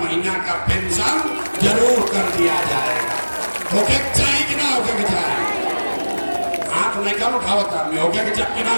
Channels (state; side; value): inverted; both; correlation -1.00